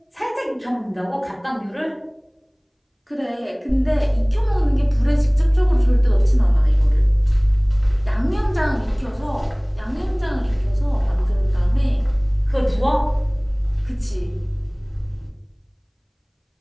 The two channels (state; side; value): identical; both; correlation 1.00